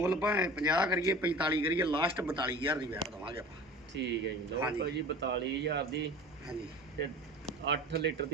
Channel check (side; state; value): both; normal; correlation 0.39